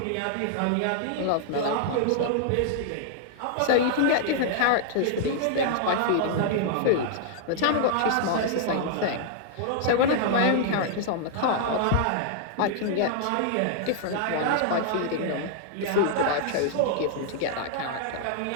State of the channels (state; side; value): different; both; correlation -0.01